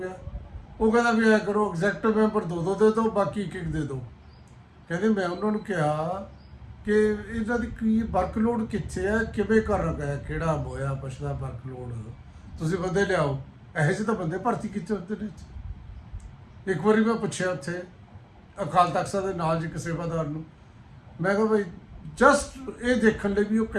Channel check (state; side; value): identical; both; correlation 1.00